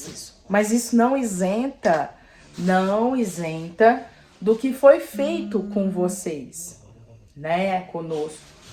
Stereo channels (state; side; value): identical; both; correlation 1.00